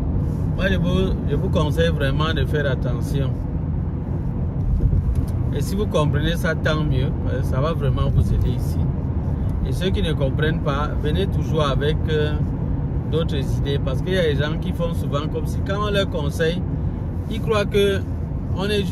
Moi je vous conseille vraiment de faire attention. Et si vous comprenez ça, tant mieux. Ça va vraiment vous aider ici. Et ceux qui ne comprennent pas, venez toujours avec d'autres idées. Parce qu'il y a des gens qui font souvent comme si quand on leur conseille, ils croient que on est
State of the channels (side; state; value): both; identical; correlation 1.00